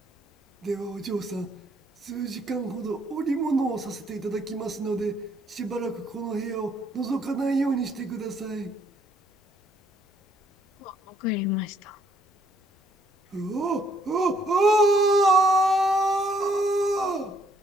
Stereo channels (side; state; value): both; normal; correlation 0.67